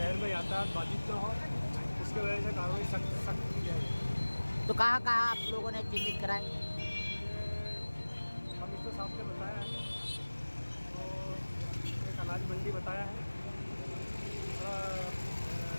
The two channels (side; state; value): both; inverted; correlation -1.00